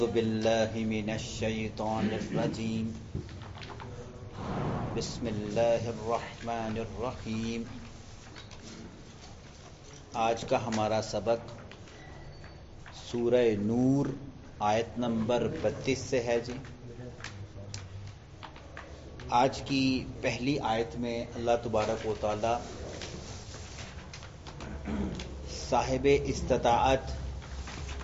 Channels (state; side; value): identical; both; correlation 1.00